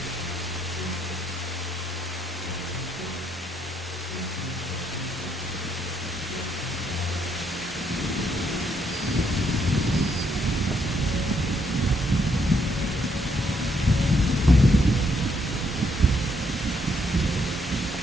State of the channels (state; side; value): normal; both; correlation 0.73